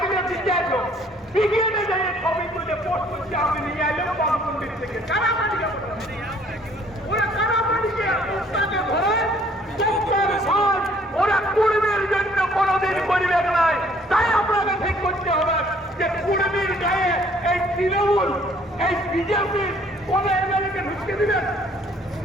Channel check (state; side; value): normal; both; correlation 0.60